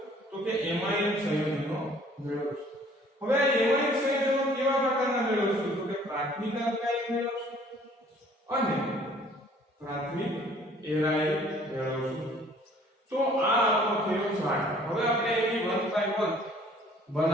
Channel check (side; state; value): both; normal; correlation 0.56